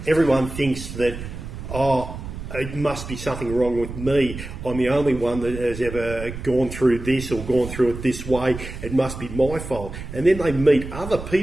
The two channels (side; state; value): right; noise; rumble, 10 dB below the sound